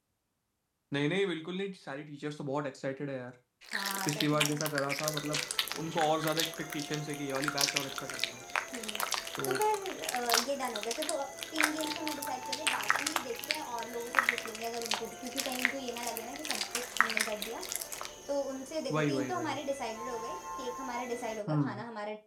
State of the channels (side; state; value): both; identical; correlation 1.00